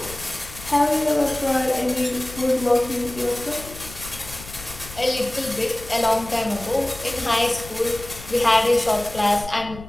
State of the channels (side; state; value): left; noise; rumble, 15 dB below the sound